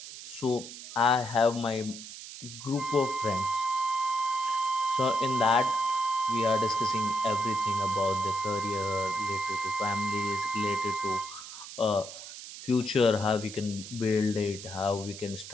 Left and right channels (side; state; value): right; noise; hiss, 12 dB below the sound